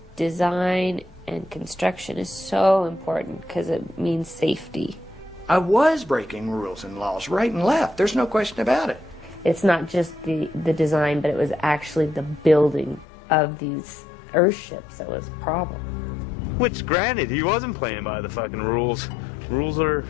design and construction is so important because it means safety. I was breaking rules and laws right and left. There's no question about it. It's not just the design, but it was actually the building of these earthships that was a problem. Which, granted, he wasn't playing by the fucking rules. Rules are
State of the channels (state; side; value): drops out; right; at 13.1 s